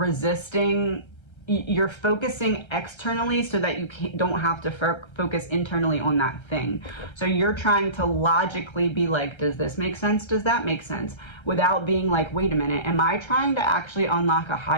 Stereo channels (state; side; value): late; right; 1.3 ms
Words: you're focusing externally so that you don't have to focus internally on that thing. So you're trying to logically be like, does this make sense? Does that make sense? Without being like, wait a minute, am I trying to actually unlock a